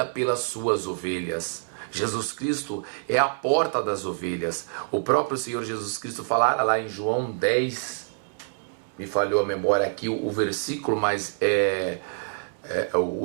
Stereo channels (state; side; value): silent; left; 61 dB below the other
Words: pelas suas ovelhas. Jesus Cristo é a porta das ovelhas. O próprio Senhor Jesus Cristo falara lá em João 10, me falhou a memória aqui o versículo, mas